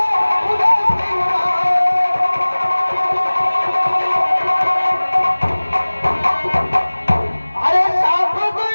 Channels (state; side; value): inverted; both; correlation -1.00